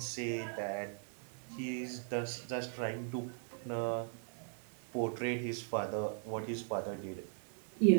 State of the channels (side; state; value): left; silent; 52 dB below the other